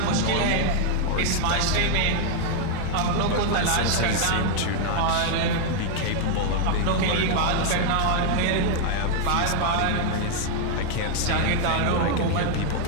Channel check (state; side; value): different; both; correlation 0.00